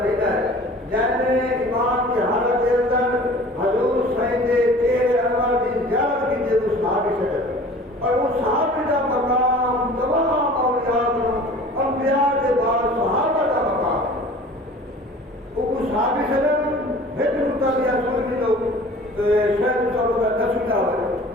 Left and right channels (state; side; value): normal; both; correlation 0.44